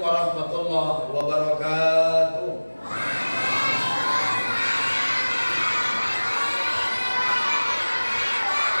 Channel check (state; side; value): inverted; both; correlation -1.00